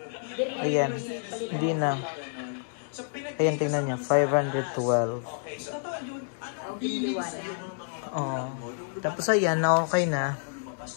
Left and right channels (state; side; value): silent; right; digital silence